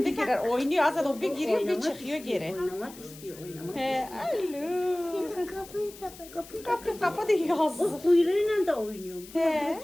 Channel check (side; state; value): left; noise; hiss, 18 dB below the sound